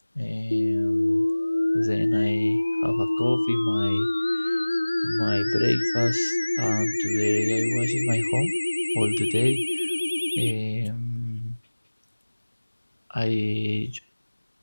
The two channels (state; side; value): inverted; both; correlation -1.00